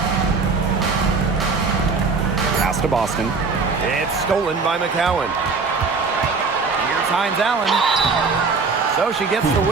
Pass to Boston. It's stolen by McCowan. Here's Hines Allen. So she gets the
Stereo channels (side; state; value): left; quieter; 4.6 dB